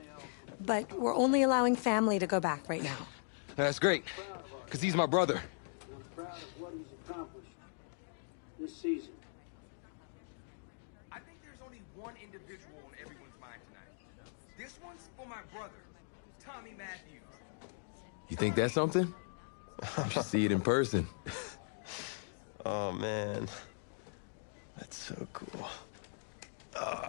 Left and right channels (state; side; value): silent; right; digital silence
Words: But we're only allowing family to go back right now. That's great, because he's my brother. I'm proud of what he's accomplished this season. I think there's only one individual on everyone's mind tonight. This one's for my brother, Tommy Matthews. You think that's something? You should see it in person. Oh, man. That's so cool.